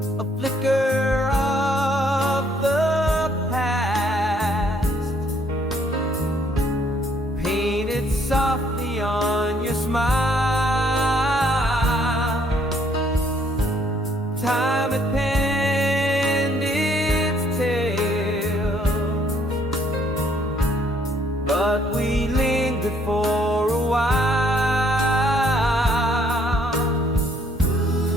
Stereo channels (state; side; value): normal; both; correlation 0.65